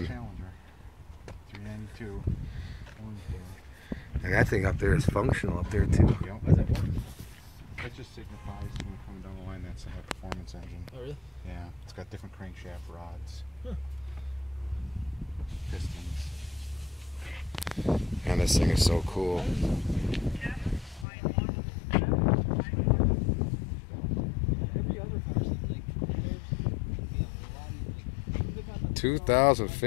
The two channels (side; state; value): right; drops out; at 21.1 s